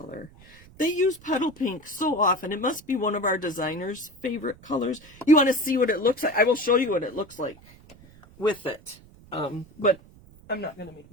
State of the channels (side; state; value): right; noise; rumble, 24 dB below the sound